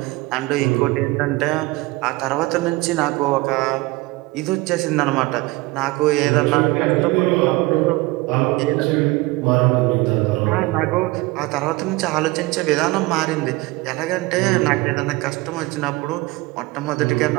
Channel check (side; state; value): left; quieter; 21.8 dB